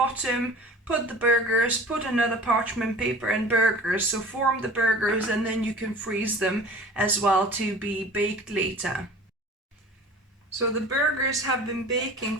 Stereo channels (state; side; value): normal; both; correlation 0.42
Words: put the burgers, put another parchment paper and burgers. So form the burgers, and then you can freeze them as well to be baked later. So the burgers have been baking